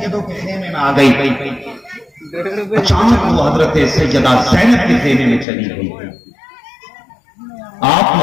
کے خیمے میں آ گئی، اچانک وہ حضرت سیدہ زینب کے خیمے میں چلی گئی۔ آپ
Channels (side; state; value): right; drops out; at 5.5 s